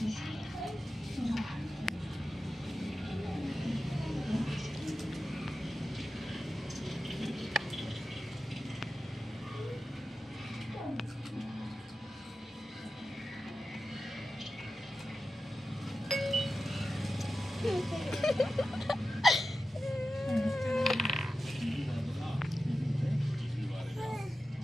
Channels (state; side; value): normal; both; correlation 0.93